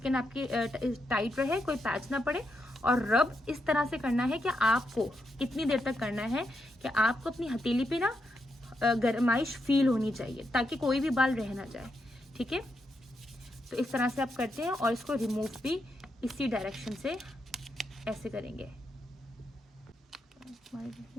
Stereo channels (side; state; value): both; normal; correlation 0.83